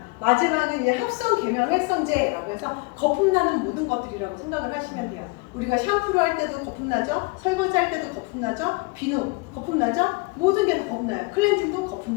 마지막은 이제 합성 계면 활성제라고 해서 거품 나는 모든 것들이라고 생각을 하시면 돼요. 우리가 샴푸를 할 때도 거품 나죠? 설거지 할 때도 거품 나죠? 비누 거품 나죠? 모든 게 다 거품 나요. 클렌징도 거품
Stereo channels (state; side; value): quieter; right; 27.2 dB